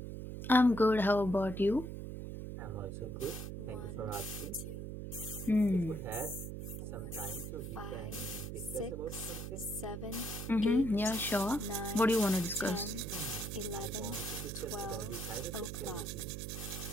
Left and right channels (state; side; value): noise; right; hum, 7 dB below the sound